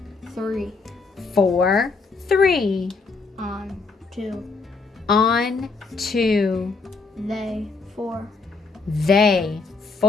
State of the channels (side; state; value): right; quieter; 4.1 dB